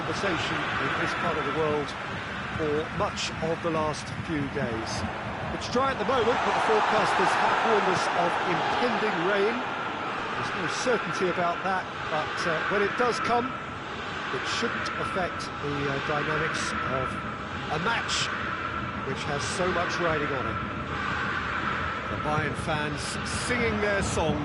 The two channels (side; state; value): both; identical; correlation 1.00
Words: in this part of the world for much of the last few days. It's dry at the moment, but the forecasters have warned us of impending rain. There's no certainty about that, but when it does come, it shouldn't affect the dynamics of a match which has so much riding on it. The Bayern fans singing their